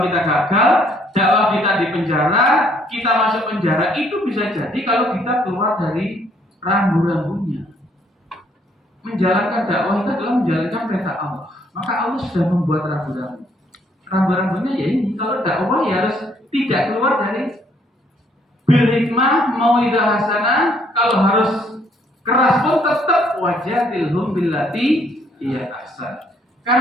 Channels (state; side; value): normal; both; correlation 0.66